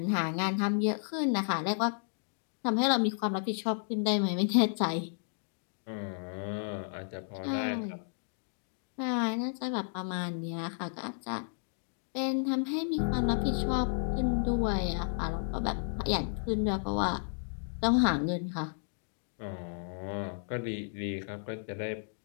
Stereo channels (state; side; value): silent; right; digital silence